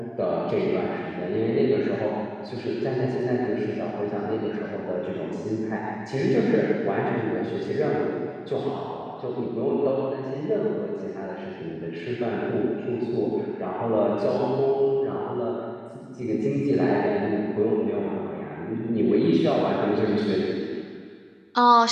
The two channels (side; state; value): both; identical; correlation 1.00